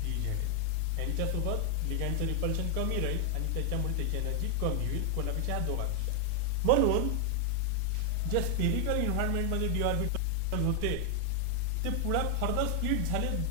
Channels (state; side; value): different; both; correlation 0.00